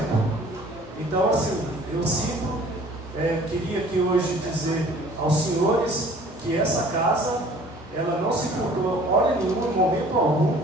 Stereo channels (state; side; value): normal; both; correlation 0.51